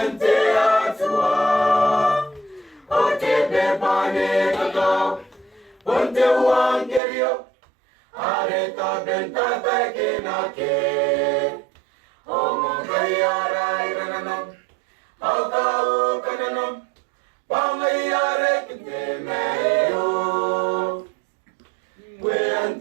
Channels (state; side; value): drops out; left; at 7.0 s